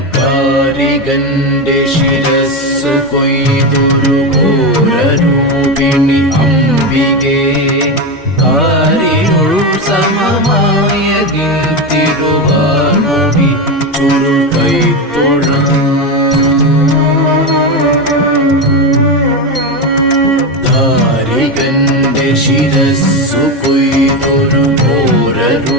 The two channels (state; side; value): normal; both; correlation 0.14